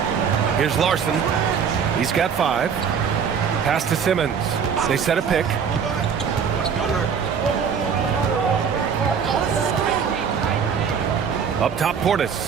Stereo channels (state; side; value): quieter; left; 6.9 dB